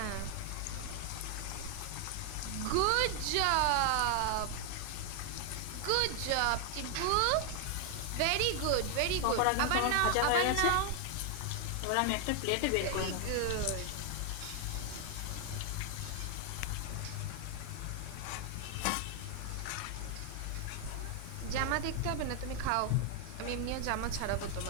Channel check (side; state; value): both; different; correlation 0.00